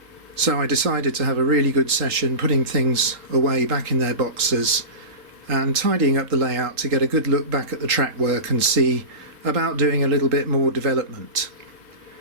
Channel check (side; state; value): left; late; 3.6 ms